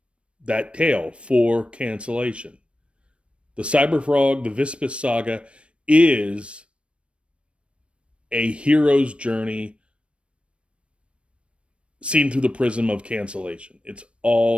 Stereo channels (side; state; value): left; late; 0.060 ms